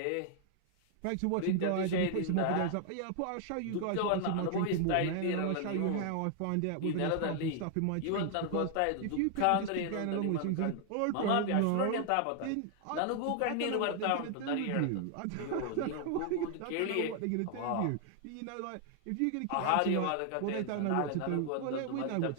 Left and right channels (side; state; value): both; different; correlation 0.00